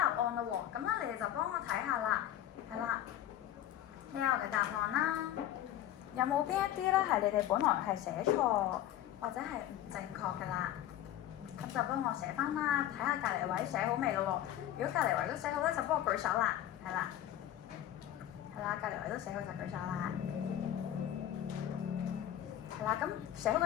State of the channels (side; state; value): right; quieter; 12.2 dB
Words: 案啦喎。咁咧，你哋就幫我睇下啦，係啦。呢個嘅答案啦，有冇邊一啲咧係你哋本來係寫錯或者係唔正確嘅啦？咁就幫我寫翻啦，睇下隔離位寫好未咯喎？如果隔離位都寫好咧，就幫我舉手啦，係啦，係啦，隔離位都寫好就舉手啦，係啦。咁寫好